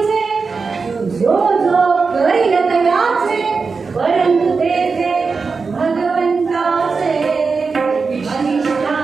जो जो करील तयाचे, परंतु तेथे भगवंताचे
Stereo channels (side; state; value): left; quieter; 4.7 dB